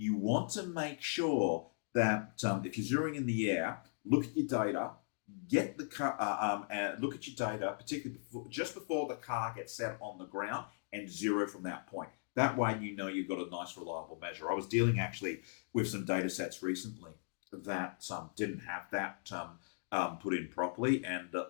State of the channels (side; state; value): right; silent; digital silence